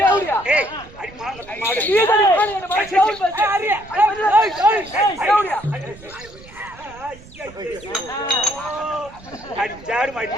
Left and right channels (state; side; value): noise; right; rumble, 21 dB below the sound